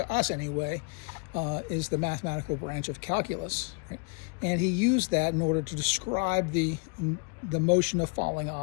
us anyway, is the mathematical branch of calculus, right? And he used that in order to describe the motion of falling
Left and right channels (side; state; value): right; quieter; 35.1 dB